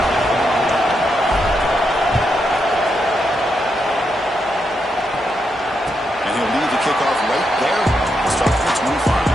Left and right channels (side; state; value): both; normal; correlation 0.82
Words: And he'll leave the kickoff right there. We'll start from the 25.